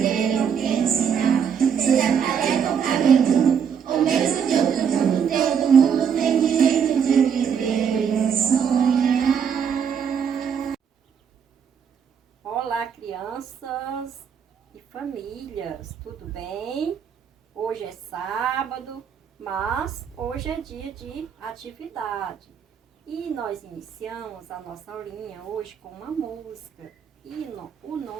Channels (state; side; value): quieter; left; 7.4 dB